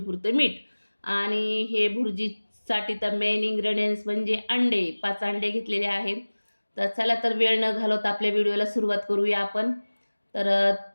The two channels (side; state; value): both; inverted; correlation -1.00